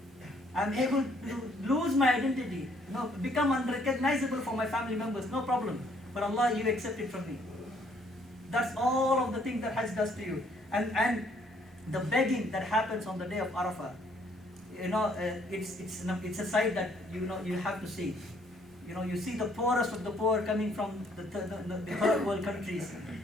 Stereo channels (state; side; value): normal; both; correlation 0.65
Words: I'm able to lose my identity, become unrecognizable for my family members, no problem. But Allah, you accept it from me. That's all of the things that Hajj does to you. And the begging that happens on the day of Arafah, it's a sight that you have to see. You see the poorest of the poor coming from the third world countries